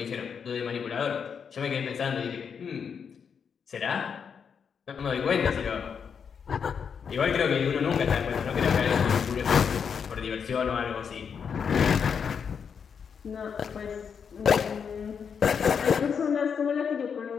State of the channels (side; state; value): right; quieter; 6.7 dB